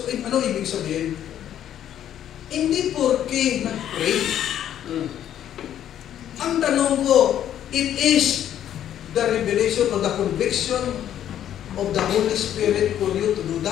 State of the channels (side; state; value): right; quieter; 10.8 dB